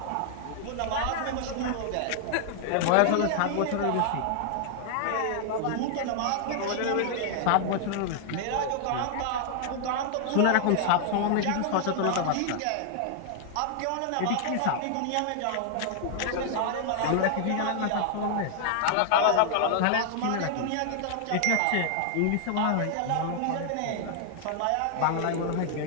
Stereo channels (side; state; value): both; different; correlation 0.00